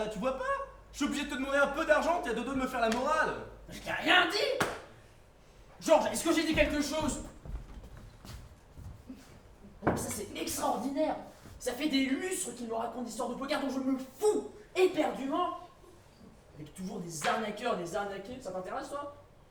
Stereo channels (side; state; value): both; identical; correlation 1.00